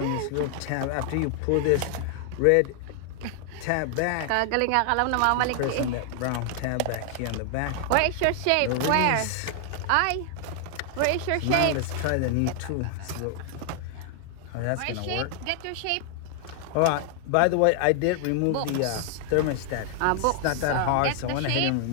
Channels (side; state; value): both; different; correlation 0.00